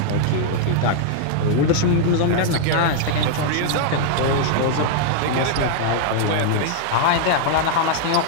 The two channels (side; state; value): both; different; correlation -0.01